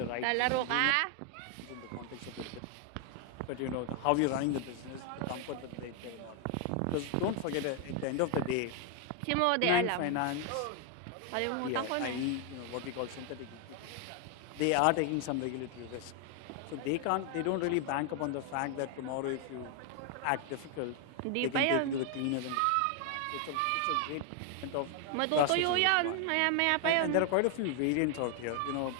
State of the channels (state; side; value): different; both; correlation 0.00